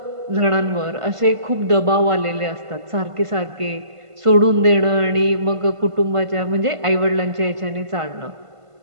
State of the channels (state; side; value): late; left; 1.5 ms